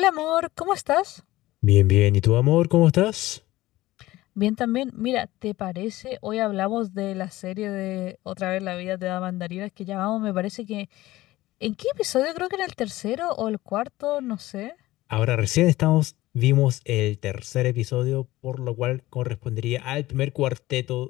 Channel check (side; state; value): right; quieter; 17.3 dB